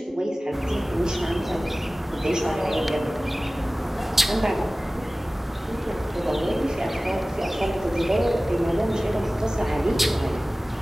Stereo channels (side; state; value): both; normal; correlation 0.97